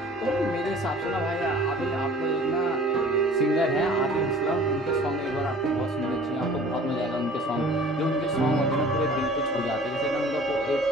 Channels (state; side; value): normal; both; correlation 0.47